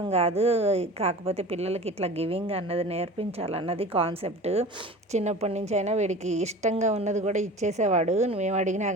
కాదు, కాకపోతే పిల్లలకి ఇట్లా గివింగ్ అన్నది నేర్పించాలన్నది కాన్సెప్ట్. చిన్నప్పటి నుంచి అయినా వీడికి ఇష్టంగా ఉన్నది కూడా ఇచ్చేసేవాడు. మేము అడిగినా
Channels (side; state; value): both; normal; correlation 0.38